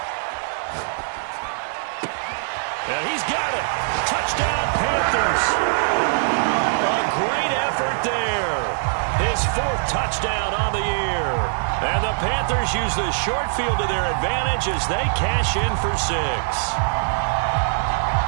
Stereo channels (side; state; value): left; silent; digital silence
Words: And he's got it. Touchdown, Panthers. A great effort there. His 4th touchdown on the year. And the Panthers use the short field to their advantage as they cash in for 6.